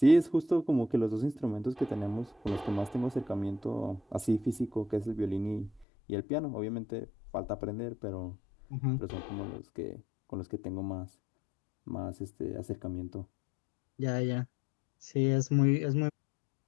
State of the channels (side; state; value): right; drops out; at 5.9 s